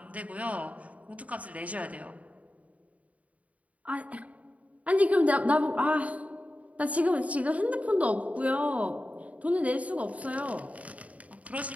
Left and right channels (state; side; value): late; left; 0.068 ms